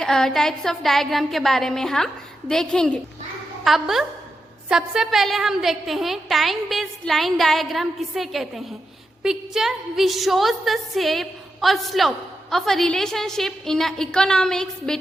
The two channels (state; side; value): normal; both; correlation 0.87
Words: टाइप्स ऑफ डायग्राम के बारे में हम देखेंगे। अब सबसे पहले हम देखते हैं टाइम बेस्ड लाइन डायग्राम किसे कहते हैं। Picture which shows the shape और slope of a relationship in economics